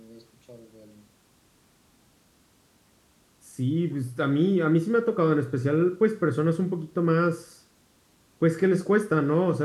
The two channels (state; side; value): identical; both; correlation 1.00